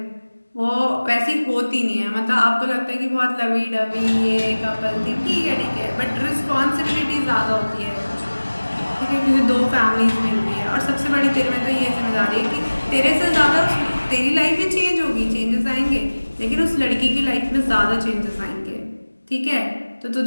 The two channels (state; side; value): inverted; both; correlation -1.00